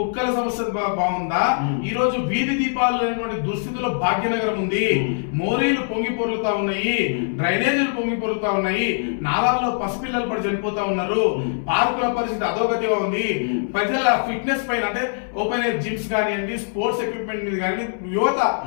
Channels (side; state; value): right; silent; 64 dB below the other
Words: సమస్య బాగుందా? ఈ రోజు వీధి దీపాలు లేనటువంటి దుస్థితిలో భాగ్యనగరం ఉంది. మోరీలు పొంగి పొరుగుతా ఉన్నాయి, డ్రైనేజీలు పొంగి పొరుగుతా ఉన్నాయి, నాలాల్లో పసిపిల్లలు పడి చనిపోతా ఉన్నారు, పార్కుల పరిస్థితి అధోగతిగా ఉంది. ప్రజల ఫిట్నెస్ పైన అంటే ఓపెన్ ఎయిర్ జిమ్స్ కానివ్వండి, స్పోర్ట్స్ ఎక్విప్మెంట్ మీద కానీ యువత